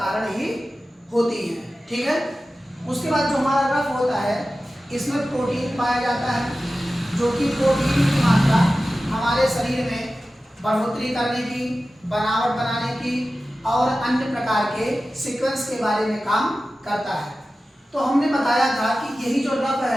ही होती हैं, ठीक है। उसके बाद जो हमारा रफ होता है इसमें प्रोटीन पाया जाता है, जो कि प्रोटीन की मात्रा हमारे शरीर में बढ़ोतरी करने की, बनावट बनाने की और अन्य प्रकार के सीक्वेंस के बारे में काम करता है। तो हमने बताया था कि यही जो रफ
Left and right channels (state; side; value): normal; both; correlation 0.95